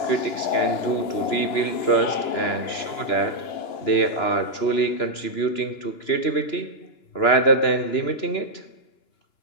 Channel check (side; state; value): right; late; 2.9 ms